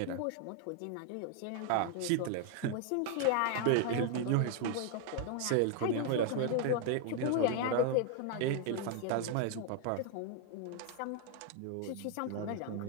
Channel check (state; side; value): different; both; correlation 0.00